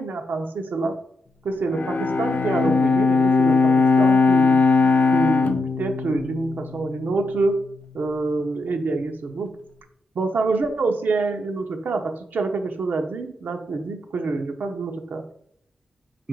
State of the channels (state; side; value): normal; both; correlation 0.84